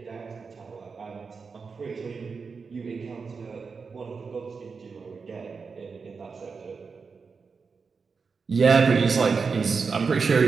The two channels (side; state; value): left; quieter; 5.1 dB